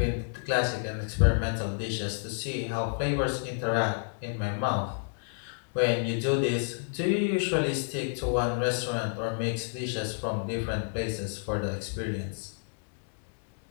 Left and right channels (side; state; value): right; silent; digital silence